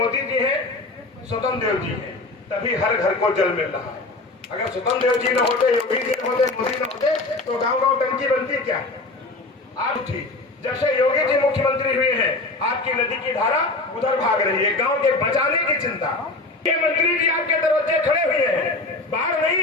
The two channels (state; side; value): quieter; right; 3.2 dB